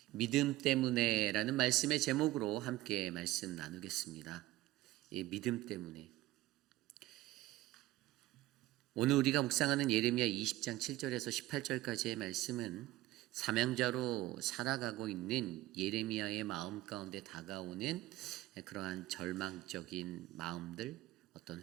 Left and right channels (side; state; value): left; quieter; 16.5 dB